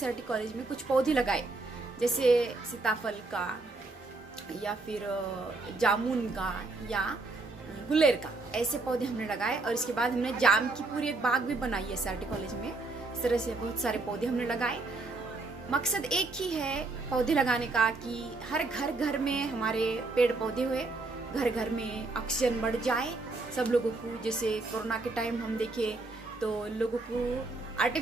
कॉलेज में कुछ पौधे लगाए, जैसे सीताफल का या फिर जामुन का या गुलेर का, ऐसे पौधे हमने लगाए। और इसके बाद हमने जाम की पूरी एक बाग भी बनाई है SRT कॉलेज में। इस तरह से बहुत सारे पौधे हमने लगाए। मकसद एक ही है पौधे लगाने का कि हर घर में हमारे पेड़ पौधे हुए, घर में ऑक्सीजन बढ़ जाए सब लोगों को। जैसे कोरोना के टाइम हम देखे तो लोगों को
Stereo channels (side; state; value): left; quieter; 3.4 dB